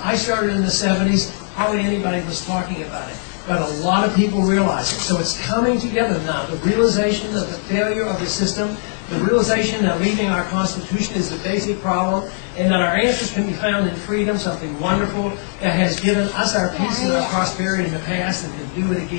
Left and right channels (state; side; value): silent; right; digital silence